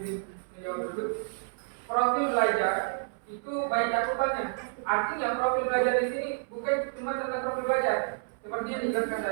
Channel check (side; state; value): left; silent; 58 dB below the other